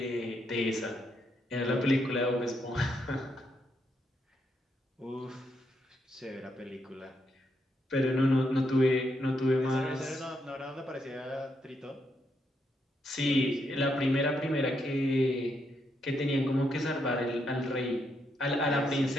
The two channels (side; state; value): both; normal; correlation 0.79